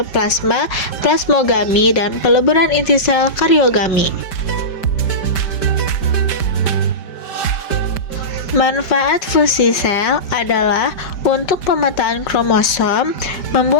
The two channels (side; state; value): right; late; 5.1 ms